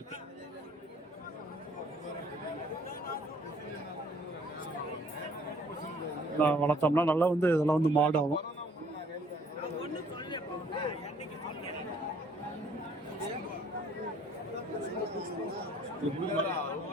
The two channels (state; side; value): normal; both; correlation 0.59